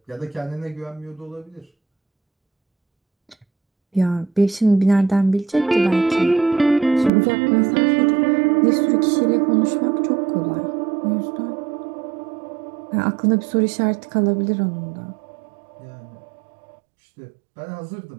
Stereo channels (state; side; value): drops out; left; at 7.1 s